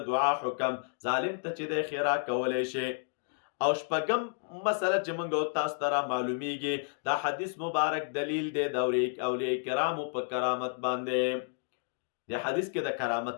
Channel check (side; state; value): right; silent; digital silence